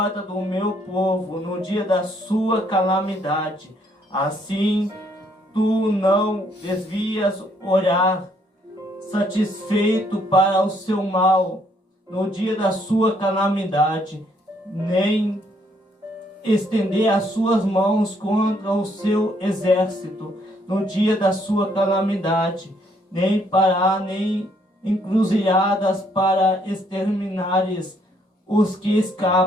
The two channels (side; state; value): both; normal; correlation 0.69